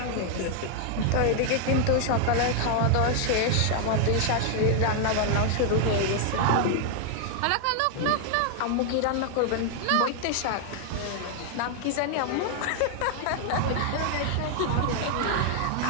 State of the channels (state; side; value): different; both; correlation 0.00